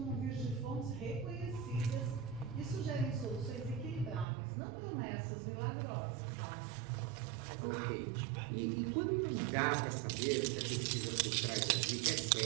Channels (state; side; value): drops out; left; at 4.2 s